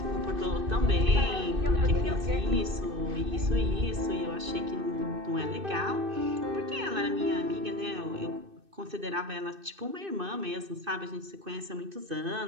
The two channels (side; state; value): left; late; 2.6 ms